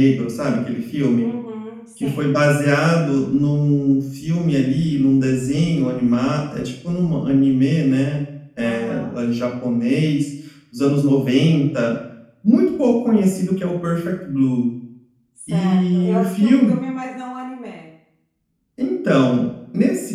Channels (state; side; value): identical; both; correlation 1.00